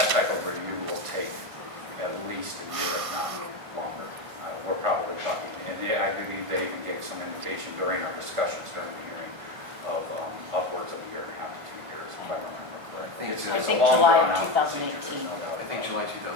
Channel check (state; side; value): late; left; 1.5 ms